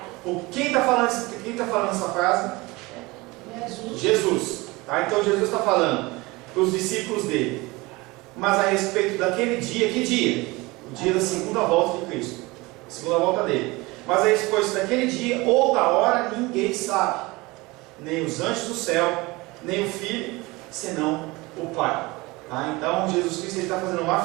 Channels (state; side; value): quieter; left; 22.7 dB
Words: Quem está falando essa frase? Jesus. Tá? Então Jesus está falando para os discípulos dele. Mas a respeito daquele dia, que dia? O dia da segunda volta de Cristo. A segunda volta dele. Mas a respeito daquele dia ou da hora, ninguém sabe. Nem os anjos do céu, nem o Filho, senão o Pai. Tá? Então Jesus Cristo está fazendo uma